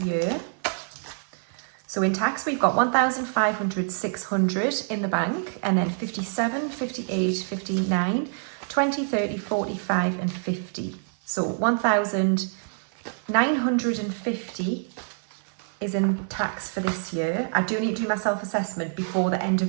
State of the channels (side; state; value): left; silent; 56 dB below the other